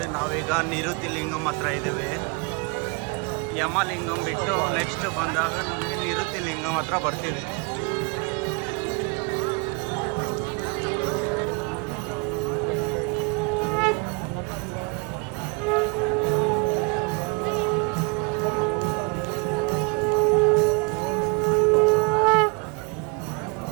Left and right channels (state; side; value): quieter; left; 32.7 dB